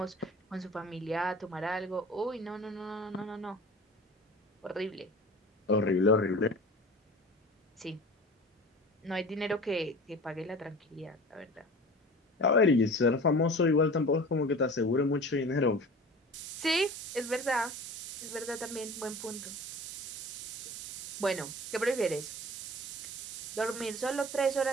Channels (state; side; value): normal; both; correlation 0.39